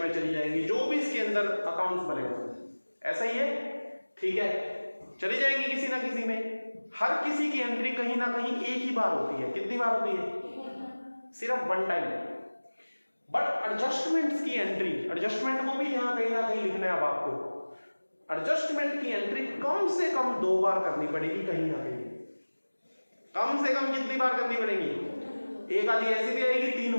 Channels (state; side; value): inverted; both; correlation -1.00